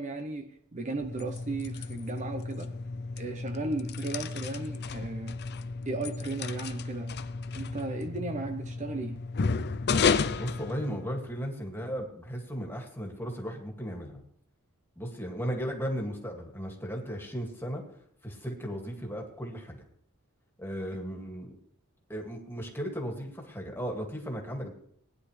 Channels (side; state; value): both; normal; correlation 0.54